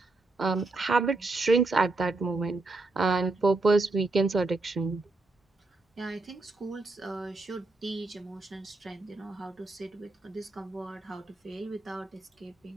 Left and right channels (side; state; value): left; quieter; 3.2 dB